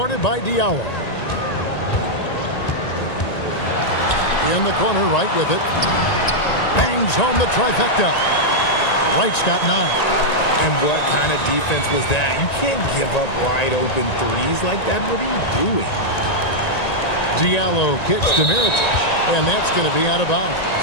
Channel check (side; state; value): right; late; 1.9 ms